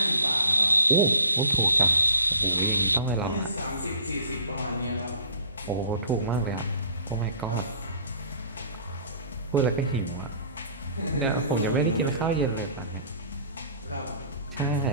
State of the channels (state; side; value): inverted; both; correlation -0.50